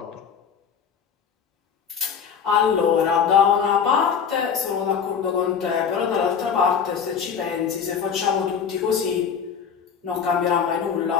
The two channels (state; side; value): quieter; right; 7.0 dB